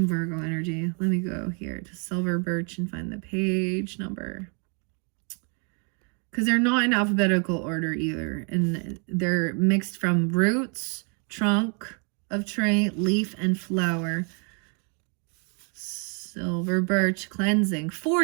Virgo energy. Let me go here to silver birch and find the page number. Because they're not in alphabetical order either. And they're mixed from roots, trunk of tree, leaf, and flower. Silver birch cleansing.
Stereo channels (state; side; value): quieter; left; 38.0 dB